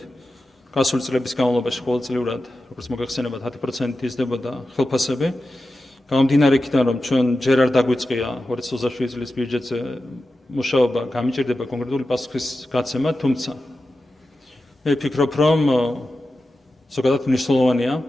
გასული წლების განმავლობაში ყოველწლიურად, როგორც მოგეხსენებათ, 10% იზრდებოდა ხელფასები. გამომდინარე იქიდან, რომ ჩვენ ჯერ არ დაგვიწყია 2027 წლის ბიუჯეტზე მუშაობა, გამიჭირდება კონკრეტული პასუხის გაცემა, თუმცა მე ვფიქრობ, რომ ზოგადად მნიშვნელოვანია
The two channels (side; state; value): both; normal; correlation 0.92